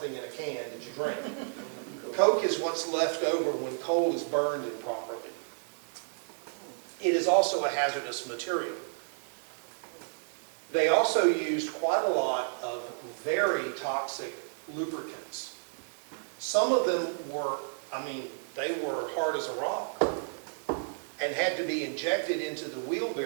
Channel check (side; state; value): left; silent; digital silence